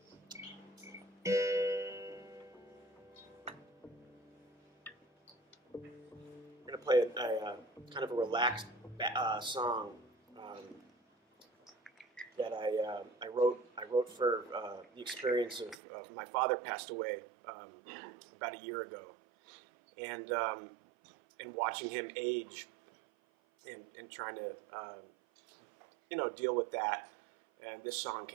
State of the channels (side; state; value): left; drops out; at 15.8 s